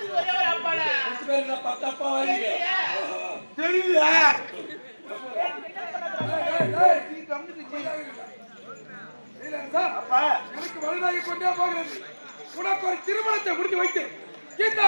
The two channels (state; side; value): inverted; both; correlation -1.00